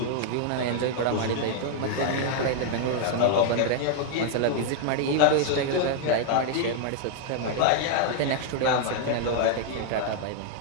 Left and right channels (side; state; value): both; different; correlation 0.00